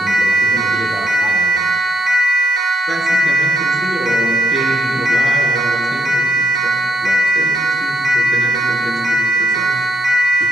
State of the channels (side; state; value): both; normal; correlation 0.79